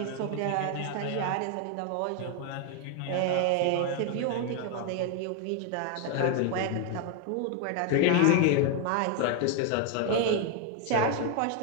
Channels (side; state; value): both; different; correlation 0.00